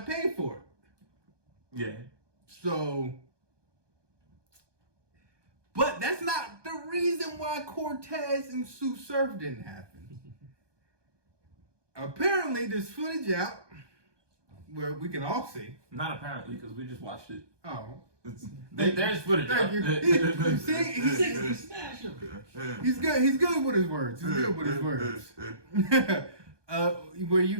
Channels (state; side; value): late; left; 1.2 ms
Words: for it. Yeah. So, but that's not the reason why Cortez and Sue Surf didn't happen. Apparently, there's footage out where we can all see. Not apparently, because we just watched it. Oh. There's footage. Thank you. He's good. He's good with his words. He's good with his words. Where